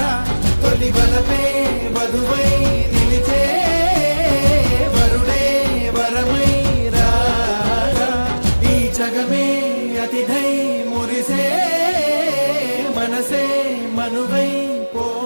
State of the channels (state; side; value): inverted; both; correlation -1.00